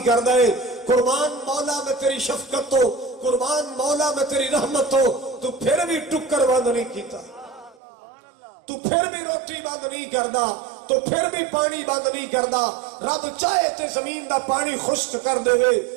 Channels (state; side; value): drops out; left; at 7.8 s